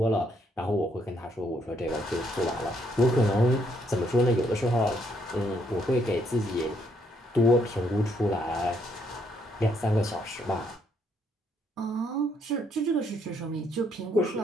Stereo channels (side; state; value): both; normal; correlation 0.72